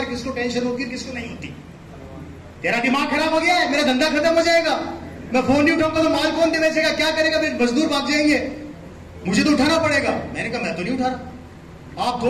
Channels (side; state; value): both; identical; correlation 1.00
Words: किसको टेंशन होती है, किसको नहीं होती। तेरा दिमाग खराब हो गया है, मेरा धंधा खत्म हो जाएगा, मैं फोन नहीं उठाऊंगा तो माल कौन दे बेचेगा, क्या करेगा, मेरे मजदूर भाग जाएंगे, मुझे तो उठाना पड़ेगा। मैंने कहा मैं तो नहीं उठा रहा, आप